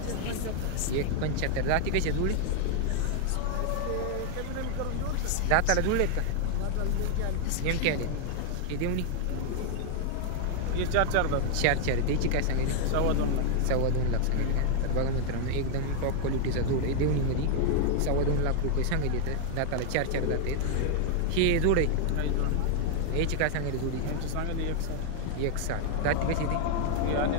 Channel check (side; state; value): both; different; correlation 0.00